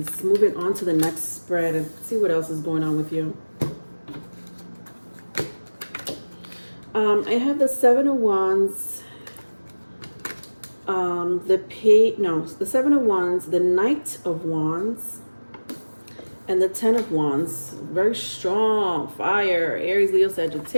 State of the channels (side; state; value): both; inverted; correlation -1.00